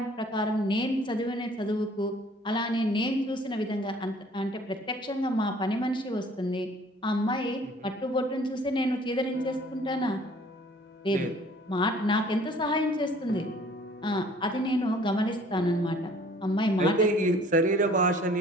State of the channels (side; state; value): both; normal; correlation 0.54